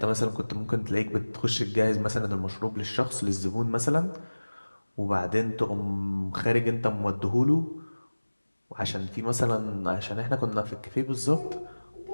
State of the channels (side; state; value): both; inverted; correlation -1.00